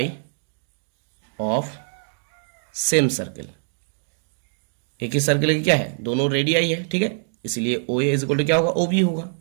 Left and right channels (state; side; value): silent; left; digital silence